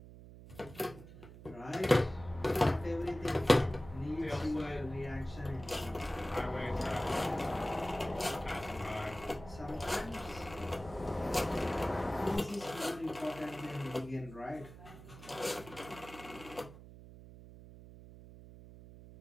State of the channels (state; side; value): noise; right; hum, 16 dB below the sound